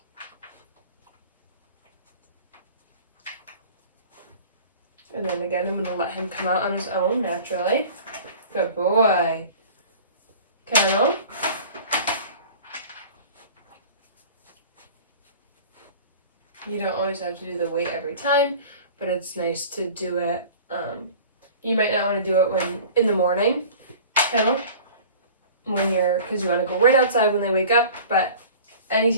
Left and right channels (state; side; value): inverted; both; correlation -0.42